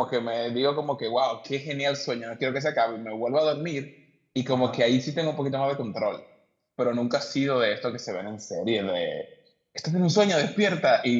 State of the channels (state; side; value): identical; both; correlation 1.00